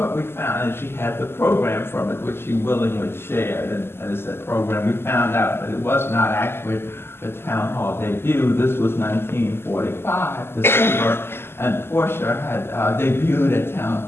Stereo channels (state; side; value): late; right; 0.12 ms